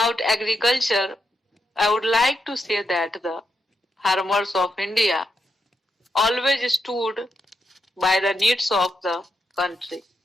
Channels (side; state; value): both; normal; correlation 0.83